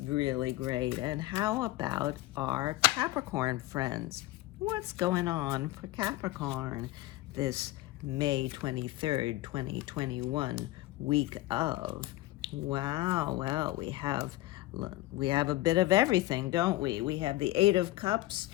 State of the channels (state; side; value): quieter; right; 17.6 dB